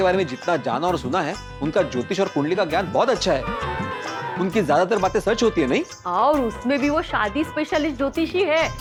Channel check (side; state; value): both; identical; correlation 1.00